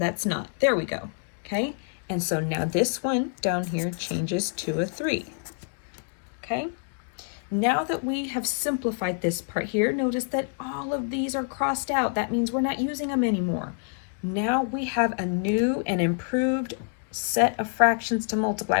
not. There we go. Okay? And so now this one down here changes to a 3. Okay? Now that we have simplified this part here, notice that all of these are crossed out. That means we're not using them anymore. Now we have a new and improved set of fractions to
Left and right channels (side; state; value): right; silent; 57 dB below the other